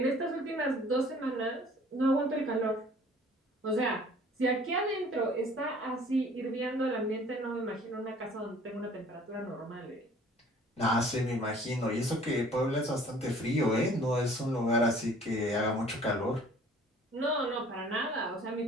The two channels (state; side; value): normal; both; correlation 0.52